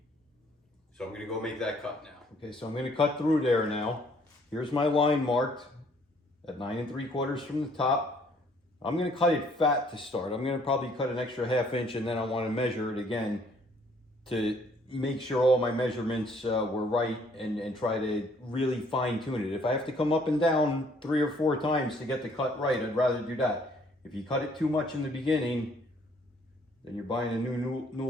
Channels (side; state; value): both; normal; correlation 0.63